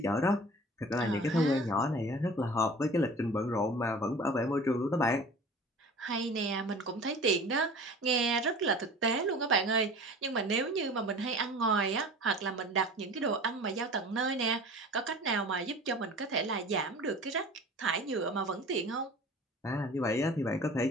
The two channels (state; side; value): normal; both; correlation 0.41